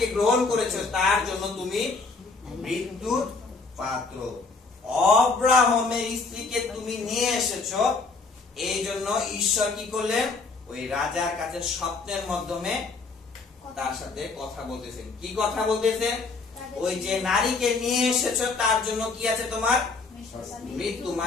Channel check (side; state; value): right; quieter; 4.1 dB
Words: গ্রহণ করেছো তার জন্য তুমি মৃত্যুর পাত্র। অব্রাহামের স্ত্রীকে তুমি নিয়ে এসেছো, এই জন্য ঈশ্বর কি করলেন? ওই রাজার কাছে স্বপ্নের মাধ্যমে তার সাথে কথা বলতেছেন। কি কথা বলতেছেন? ওই যে নারীকে নিয়ে এসেছো তার জন্য কি আছে তোমার? মৃত্যু,